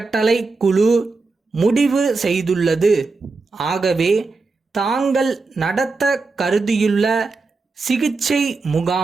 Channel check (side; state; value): left; quieter; 3.9 dB